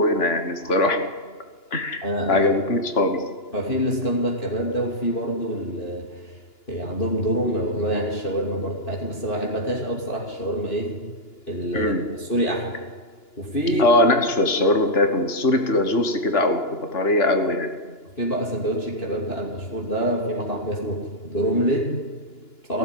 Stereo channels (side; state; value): right; late; 2.9 ms